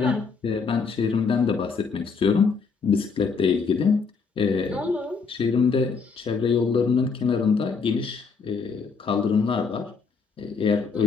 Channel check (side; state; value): right; quieter; 5.2 dB